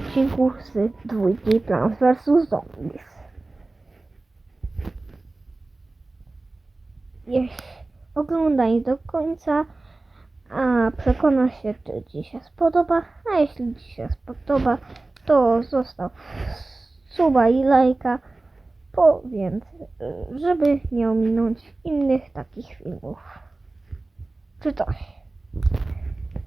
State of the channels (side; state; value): left; quieter; 3.1 dB